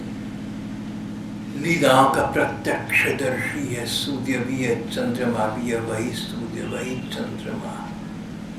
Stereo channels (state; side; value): identical; both; correlation 1.00